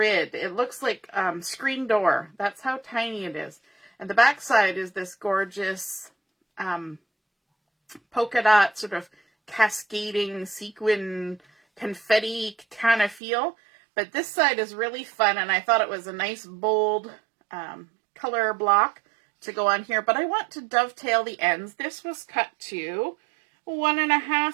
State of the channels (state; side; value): drops out; left; at 13.2 s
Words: It looks like screen door. That's how tiny it is. And the back side is this gorgeous polka dot sort of cascading sequin confetti kind of feel. But this side is really fun, and I thought it was a nice bold color block to go on here. But I want to dovetail the ends. This was cut to